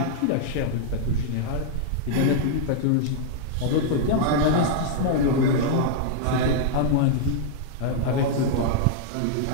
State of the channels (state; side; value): different; both; correlation -0.02